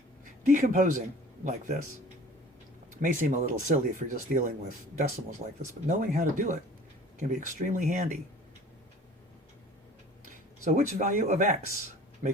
decomposing like this may seem a little silly if you're just dealing with decimals like this, but knowing how to do it can be extremely handy. So which value of x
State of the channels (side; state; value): both; normal; correlation 0.46